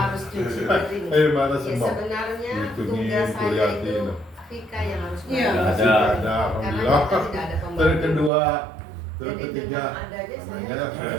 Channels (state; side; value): drops out; left; at 8.3 s